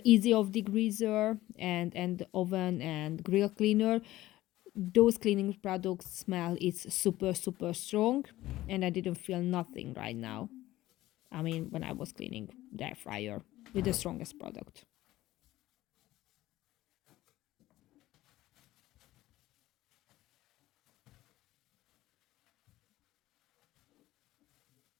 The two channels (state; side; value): quieter; right; 16.1 dB